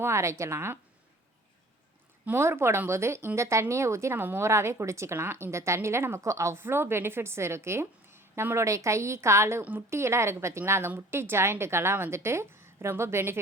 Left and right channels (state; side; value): normal; both; correlation 0.49